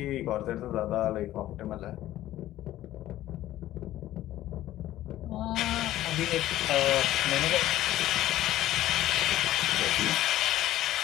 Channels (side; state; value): right; quieter; 14.2 dB